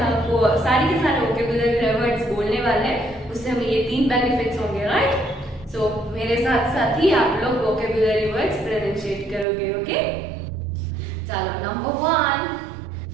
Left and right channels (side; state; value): left; drops out; at 9.5 s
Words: को सारी के सारे वोकैबुलरी वर्ड्स बोलने वाले हैं, उससे हमें ये 3 बेनिफिट्स होंगे, राइट? सो मेरे साथ साथ ही आप लोग वोकैबुलरी वर्ड्स प्रोनाउंसिएट करोगे, ओके? चलो नंबर 1